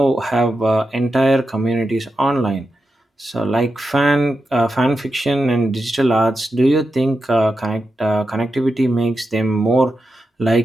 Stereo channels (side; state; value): both; normal; correlation 0.89